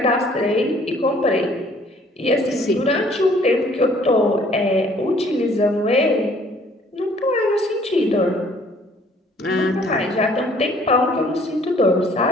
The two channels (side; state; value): both; normal; correlation 0.58